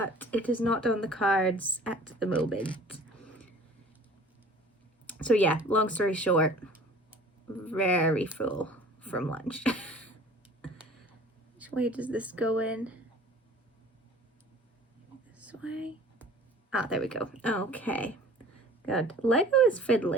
it is not on the cards at the moment. So yeah, long story short, very full from lunch. Which way does this go in? This way? Ah, there we go. Okay, good. Lego is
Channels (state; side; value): normal; both; correlation 0.47